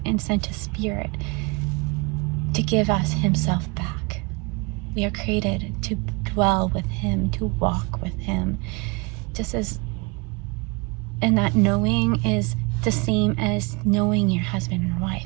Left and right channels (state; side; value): quieter; left; 28.4 dB